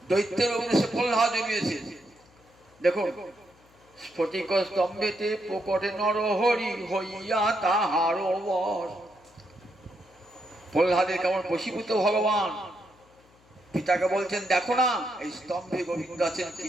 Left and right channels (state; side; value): noise; left; hum, 30 dB below the sound